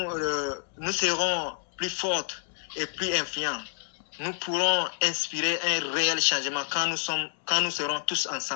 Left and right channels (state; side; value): silent; right; digital silence